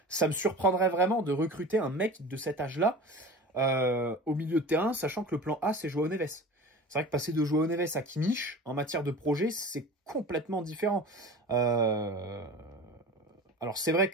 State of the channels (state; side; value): normal; both; correlation 0.36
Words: ça me surprendrait vraiment de recruter un mec de cet âge-là au milieu de terrain, sachant que le plan A, c'est João Neves. C'est vrai que passer de João Neves à Kimmich, en matière de projet, c'est complètement différent. Alors c'est vrai